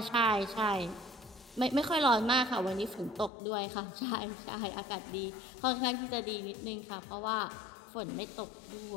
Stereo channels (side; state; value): right; drops out; at 3.3 s